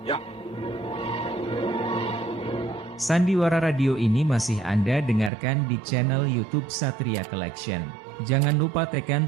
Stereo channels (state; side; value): drops out; left; at 5.3 s